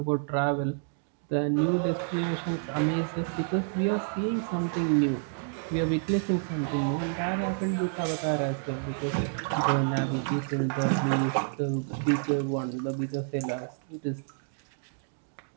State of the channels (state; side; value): silent; left; digital silence